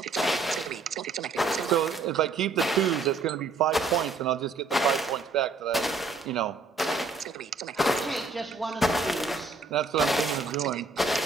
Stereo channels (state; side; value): quieter; left; 3.9 dB